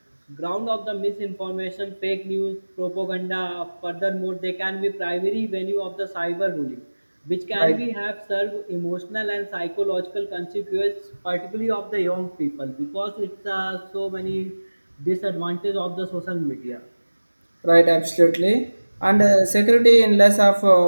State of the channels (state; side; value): inverted; both; correlation -1.00